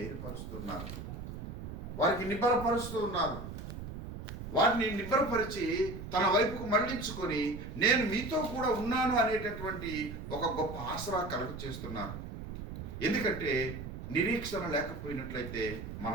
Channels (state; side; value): noise; right; rumble, 9 dB below the sound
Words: వారికి నిబ్బరపరుస్తూ ఉన్నారు. వారిని నిబ్బరపరిచి తన వైపుకు మళ్లించుకొని, నేను మీతో కూడా ఉన్నాను అనేటటువంటి ఒక గొప్ప ఆసరా కలుగ చేస్తున్నారు. ఎందుకంటే నిరీక్షణ లేకపోయినట్లయితే